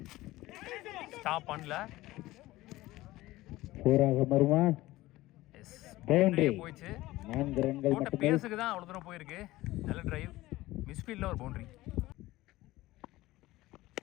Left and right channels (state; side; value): quieter; right; 17.7 dB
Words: stop பண்ணல, போயிடுச்சு. போட்ட பேஸுக்கு தான் அவ்வளோ தூரம் போயிருக்கு. நல்ல டிரைவ், மிஸ்ஃபீல்டில் ஒரு பவுண்டரி.